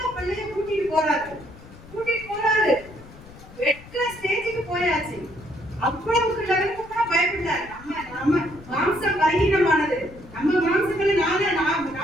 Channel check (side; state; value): left; noise; rumble, 19 dB below the sound